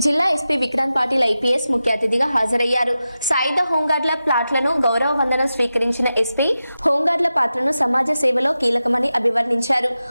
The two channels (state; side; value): inverted; both; correlation -0.92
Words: జిల్లా ఎస్పీ విక్రాంత్ పాటిల్ ఐపీఎస్ ముఖ్య అతిథిగా హాజరయ్యారు. సాయుధ హోంగార్డుల ప్లాట్లను గౌరవ వందనం స్వీకరించిన ఎస్పీ హోంగార్డుల పాత్రను సమాజ సేవలో కీలకమని అభివర్ణించారు.